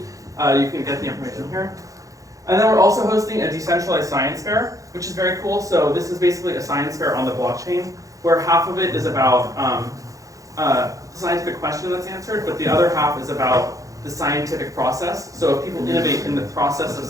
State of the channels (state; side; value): late; left; 0.16 ms